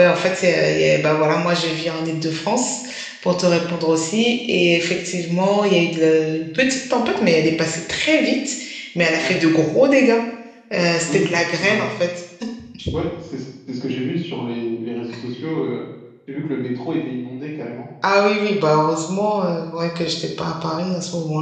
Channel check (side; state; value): both; identical; correlation 1.00